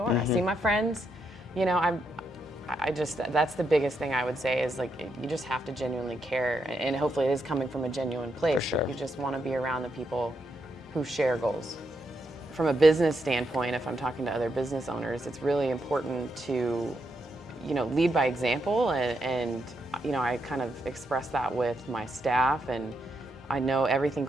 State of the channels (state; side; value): normal; both; correlation 0.81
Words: I see my friends, you know, that's the biggest thing I would say is, like, you just have to genuinely care, and hopefully it is coming from a genuine place. For sure. You just want to be around the people who share goals. From a business standpoint, if I'm talking to other business owners, it's really important to, you know, lead by example, and you know, I kind of express that with my staff, and I know everything